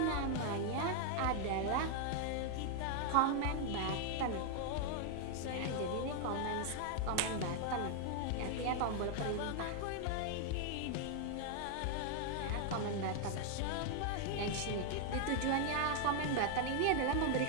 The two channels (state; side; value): different; both; correlation 0.00